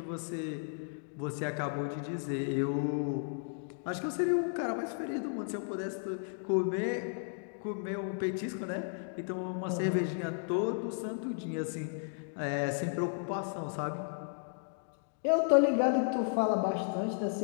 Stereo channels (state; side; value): silent; right; digital silence